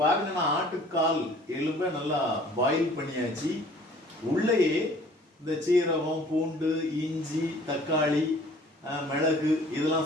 பாருங்க, நான் ஆட்டுக்கால் எலும்பை நல்லா பாயில் பண்ணியாச்சு. உள்ளேயே இந்த சீரகம், பூண்டு, இஞ்சி, தக்காளி, மிளகு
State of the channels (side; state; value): both; normal; correlation 0.52